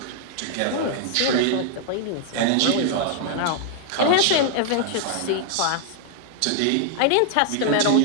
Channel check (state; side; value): different; both; correlation -0.01